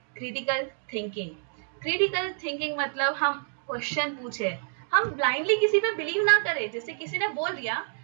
critical thinking. Critical thinking मतलब हम क्वेश्चन पूछे, हम ब्लाइंडली किसी पे बिलीव ना करें। जैसे किसी ने बोल दिया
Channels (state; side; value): silent; left; digital silence